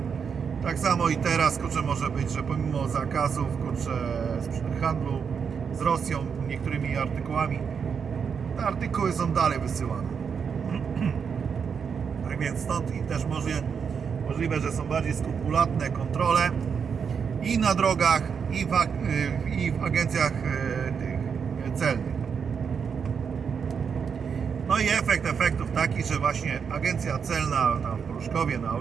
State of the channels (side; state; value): left; quieter; 6.5 dB